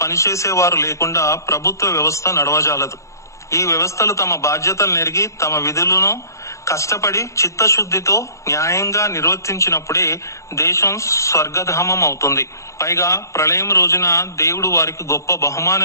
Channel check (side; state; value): right; late; 0.15 ms